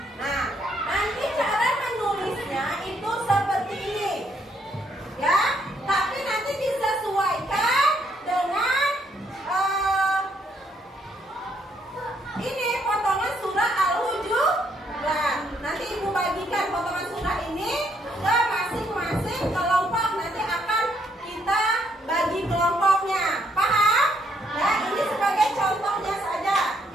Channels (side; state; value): both; normal; correlation 0.72